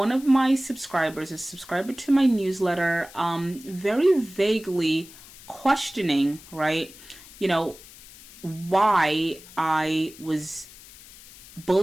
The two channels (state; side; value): noise; left; hiss, 20 dB below the sound